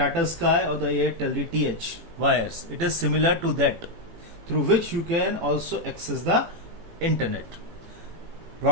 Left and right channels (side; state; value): left; late; 18 ms